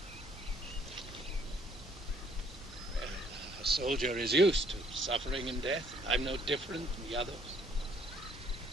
Well, a soldier is used to suffering and death. I'm no different from the others.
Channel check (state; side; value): normal; both; correlation 0.63